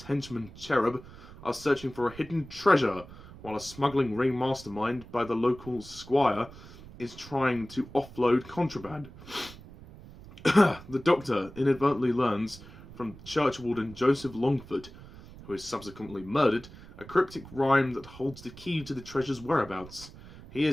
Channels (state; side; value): noise; right; rumble, 18 dB below the sound